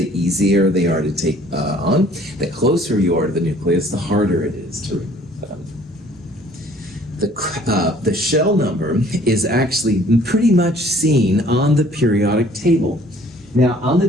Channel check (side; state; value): both; normal; correlation 0.56